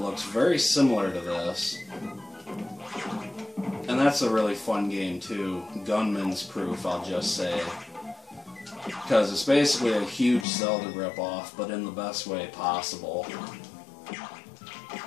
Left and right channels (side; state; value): right; drops out; at 10.5 s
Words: very similar to this. And that's a really fun game too. Gunman's Proof, I'll just say. Because it's basically a huge Zelda ripoff, but in the best way possible.